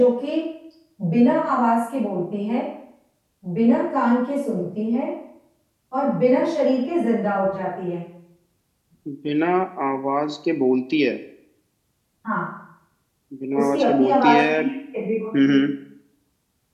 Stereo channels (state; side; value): identical; both; correlation 1.00